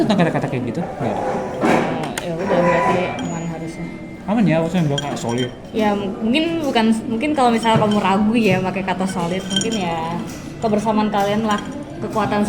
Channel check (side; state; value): both; identical; correlation 1.00